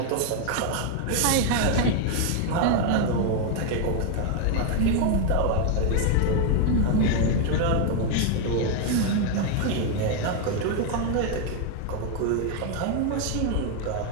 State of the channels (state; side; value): different; both; correlation 0.01